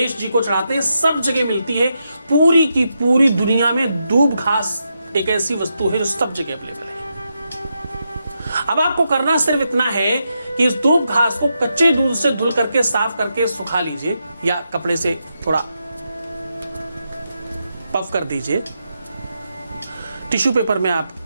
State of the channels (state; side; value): inverted; both; correlation -0.84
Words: जी को चढ़ाते हैं, सब जगह मिलती है। पूरी की पूरी दुनिया में दूब घास एक ऐसी वस्तु है जो सब जगह अवेलेबल है। अब आपको करना सिर्फ इतना है कि इस दूब घास को कच्चे दूध से धुल करके साफ करके सुखा लीजिए, या कपड़े से थोड़ा पफ कर दीजिए। टिश्यू पेपर में आप